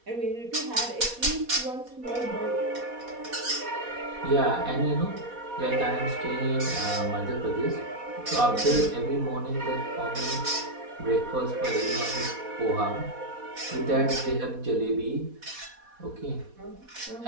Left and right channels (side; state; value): left; late; 4.1 ms